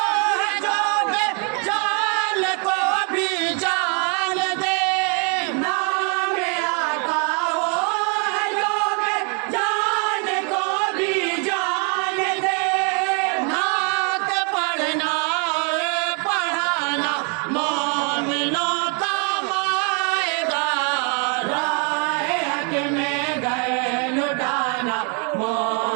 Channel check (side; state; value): left; quieter; 37.2 dB